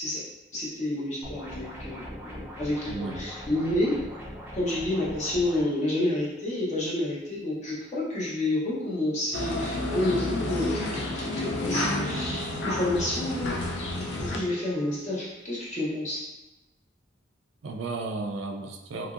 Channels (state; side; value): normal; both; correlation 0.59